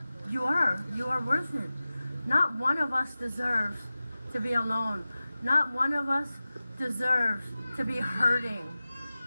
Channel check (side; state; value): both; inverted; correlation -0.96